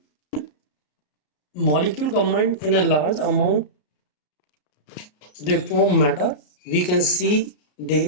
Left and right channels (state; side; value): late; right; 33 ms